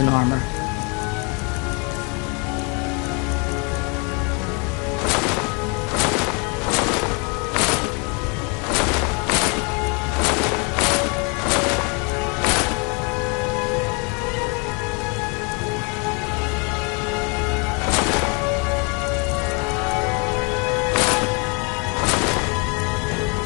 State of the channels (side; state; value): right; quieter; 33.0 dB